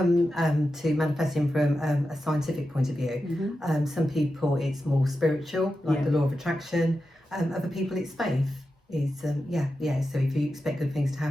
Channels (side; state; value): both; normal; correlation 0.90